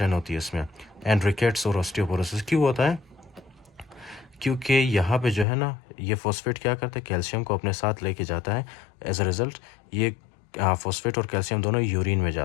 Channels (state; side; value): drops out; right; at 5.5 s